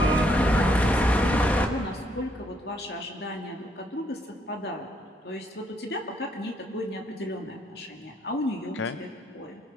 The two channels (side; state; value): both; normal; correlation 0.72